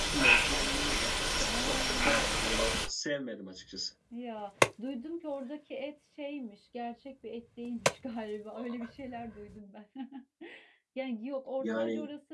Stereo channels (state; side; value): identical; both; correlation 1.00